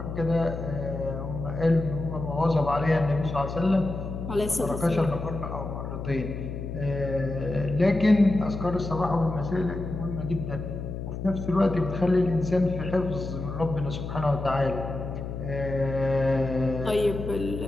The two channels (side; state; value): left; noise; hum, 6 dB below the sound